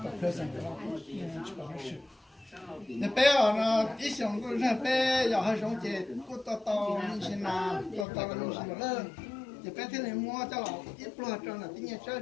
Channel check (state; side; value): drops out; right; at 8.1 s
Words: tập rồi sao, chỉ có cái sự. Để bé nó ít xong cũng ra bé, giờ hay sống chết, cũng to như thế nào, to như thế nào lớn, để bé thế này mua cho nó ít lo cho nó, tí nhẹ